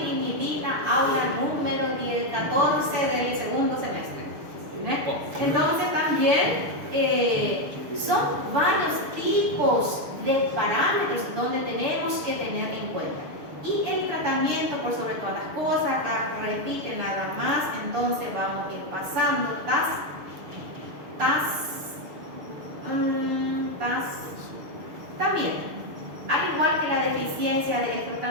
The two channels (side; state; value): left; late; 6.8 ms